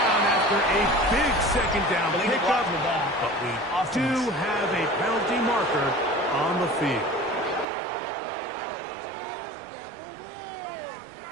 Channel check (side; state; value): left; drops out; at 7.7 s